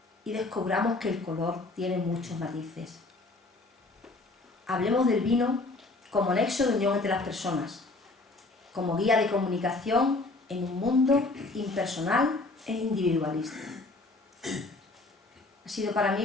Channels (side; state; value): right; quieter; 3.2 dB